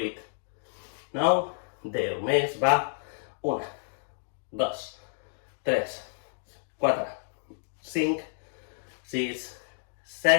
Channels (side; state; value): right; silent; digital silence